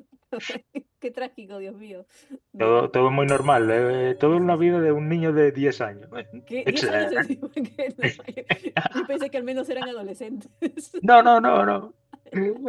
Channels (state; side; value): identical; both; correlation 1.00